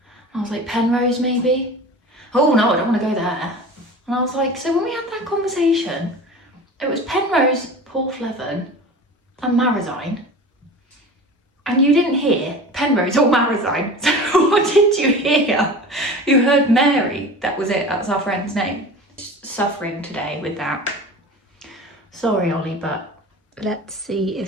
And I was like, Penrose maybe? Oh no, I don't want to go there. And I was like, so when we had that conversation, it was Penrose, Porthleven, and Marazion, and you didn't hear Penrose or Marazion. So what did you hear? You heard Mary. That was it. That's our friend's name. Suffering today with that. Sorry, Ollie, but let's see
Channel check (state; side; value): normal; both; correlation 0.36